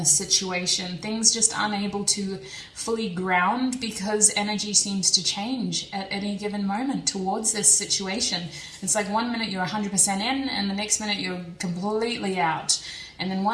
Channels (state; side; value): identical; both; correlation 1.00